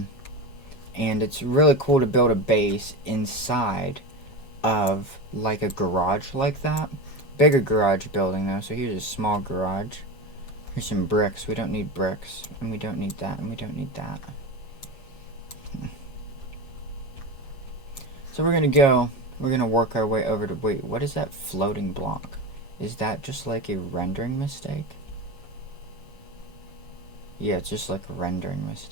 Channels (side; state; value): right; late; 7.3 ms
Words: it's really cool to build a base inside of like a garage like that. Bigger garage building though, so here's a small garage. Here's some bricks. We don't need bricks. And we don't need that, and we don't need that. So we're gonna work our way over to, wait, what is that floating block? Is that just like a rendering mistake? Yeah, it's just like a rendering